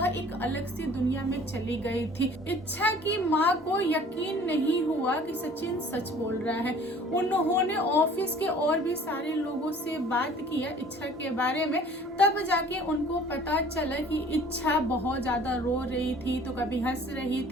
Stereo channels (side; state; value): both; normal; correlation 0.50